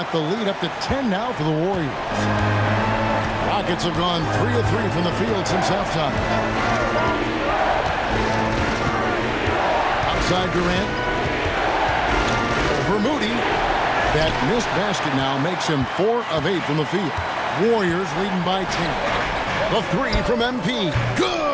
the lead up to 10 now for the Warriors. Rockets have gone 3 of 3 from the field since halftime. Outside Durant. For Moody. That missed basket now makes him 4 of 8 from the field. Warriors leading by 10. The three from MP.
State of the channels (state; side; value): identical; both; correlation 1.00